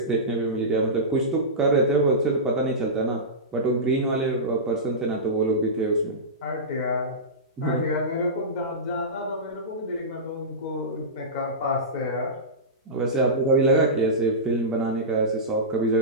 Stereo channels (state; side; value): normal; both; correlation -0.17